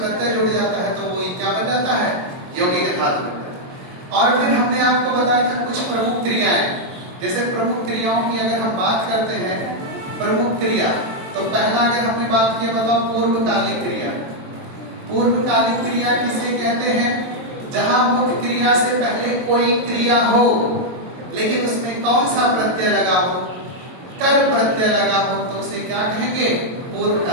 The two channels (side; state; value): left; late; 23 ms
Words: जुड़ जाता है तो वो क्या बन जाता है? यौगिक धातु बन जाता है। और फिर हमने आपको बताया था कुछ प्रमुख क्रियाएं। जैसे प्रमुख क्रियाओं की अगर हम बात करते हैं, प्रमुख क्रिया, तो पहला अगर हमने बात की बताओ पूर्वकालिक क्रिया। पूर्वकालिक क्रिया किसे कहते हैं? जहां मुख्य क्रिया से पहले कोई क्रिया हो, लेकिन उसमें कौन सा प्रत्यय लगा हो? कर प्रत्यय लगा हो, तो उसे क्या कहेंगे?